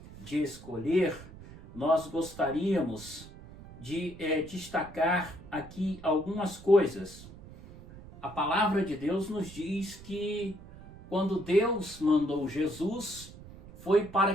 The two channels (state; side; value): noise; right; rumble, 17 dB below the sound